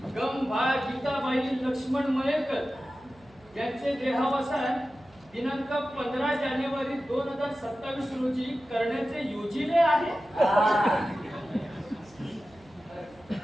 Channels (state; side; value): noise; right; hum, 28 dB below the sound